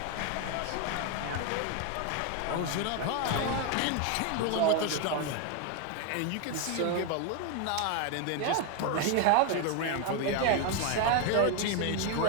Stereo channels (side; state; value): both; different; correlation 0.01